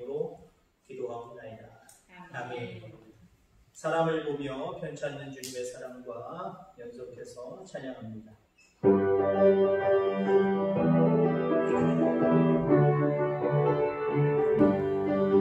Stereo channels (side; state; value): both; identical; correlation 1.00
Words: 기도하옵나이다. 아멘. 사람을 보며 편찮는 주님의 사랑과 연속해서 찬양합니다.